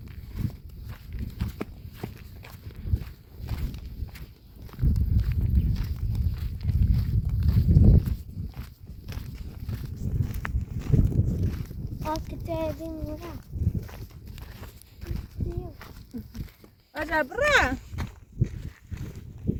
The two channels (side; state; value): both; identical; correlation 1.00